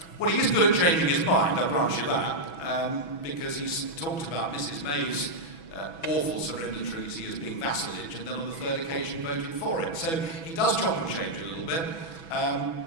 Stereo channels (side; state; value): right; late; 6.1 ms